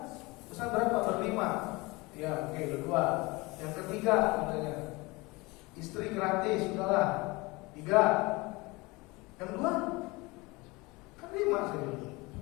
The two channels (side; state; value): right; quieter; 24.0 dB